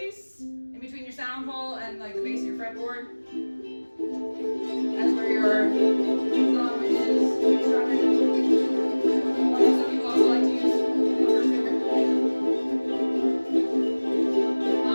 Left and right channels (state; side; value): inverted; both; correlation -1.00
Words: in between your sound hole and like the base of your fretboard. That's where your thumb is strumming. Some people also like to use the first finger.